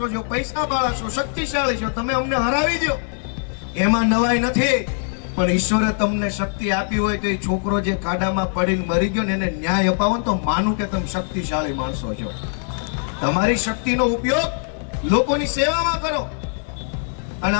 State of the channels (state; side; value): silent; right; 62 dB below the other